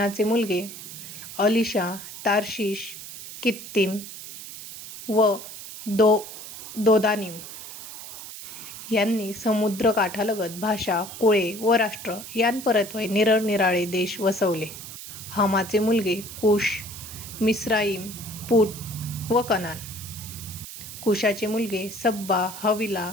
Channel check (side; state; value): right; noise; hiss, 12 dB below the sound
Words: मुलगे अलिशा, तार्शिश, कित्तीम व दोदानीम. यांनी समुद्रकाठालगत भाषा, कुळे व राष्ट्र यांपरत्वे निरनिराळे देश वसवले. हामाचे मुलगे कुश, मिस्राईम, पूट व कनान. कुशाचे मुलगे सब्बा, हविला,